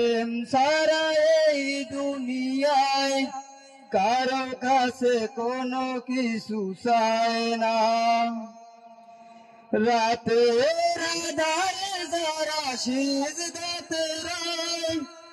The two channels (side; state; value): both; identical; correlation 1.00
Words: ছাড়া এই দুনিয়ায় কারো কাছে কোনো কিছু চায় না। রাতের আঁধারে যারা সিজদাতে রয়,